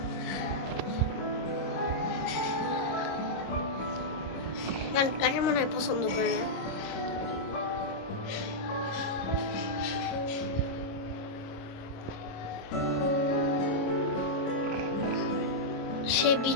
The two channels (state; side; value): late; right; 26 ms